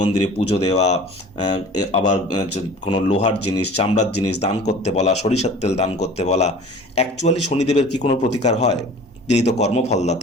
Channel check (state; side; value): normal; both; correlation 0.44